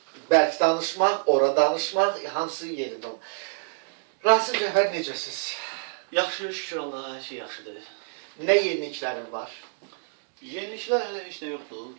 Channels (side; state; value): left; silent; digital silence